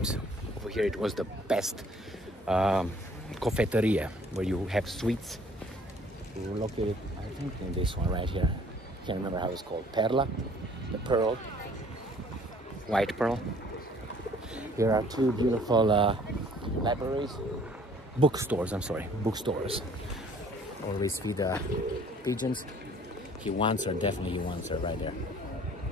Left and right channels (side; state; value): both; normal; correlation 0.56